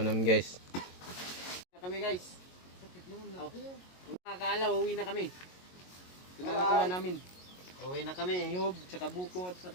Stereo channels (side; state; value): right; late; 22 ms